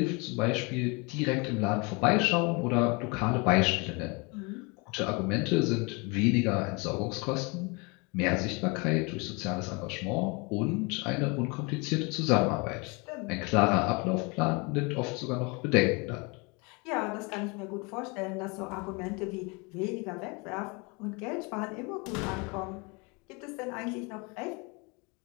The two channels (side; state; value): right; quieter; 29.6 dB